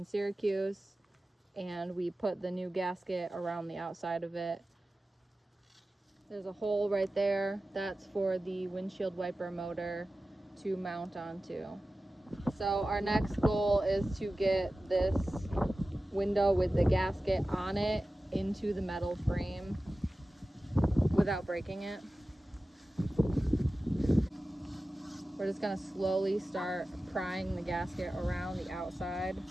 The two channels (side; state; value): both; normal; correlation 0.95